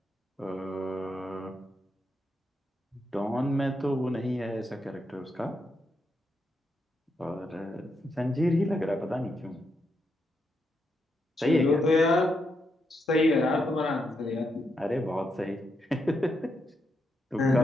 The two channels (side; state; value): both; normal; correlation 0.81